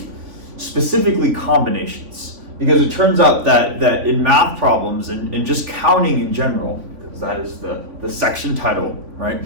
specifically combinations, because it turns out that in math problems and just counting in general, that is the section title, right?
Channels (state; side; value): late; left; 3.5 ms